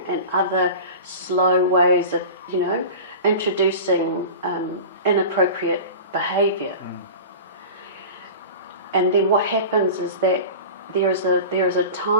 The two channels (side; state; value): both; inverted; correlation -0.33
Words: and other slow ways of, you know, introducing inappropriate behaviour. And then what happens is that there is a